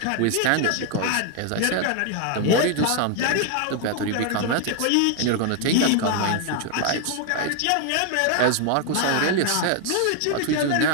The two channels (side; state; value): both; different; correlation 0.00